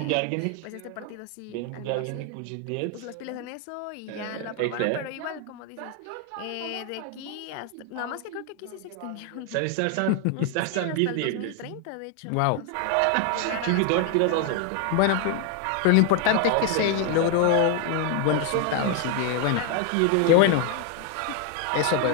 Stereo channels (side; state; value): both; different; correlation 0.01